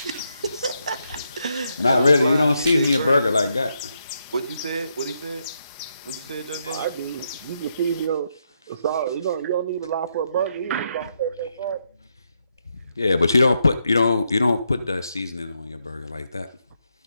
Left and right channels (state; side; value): inverted; both; correlation -0.80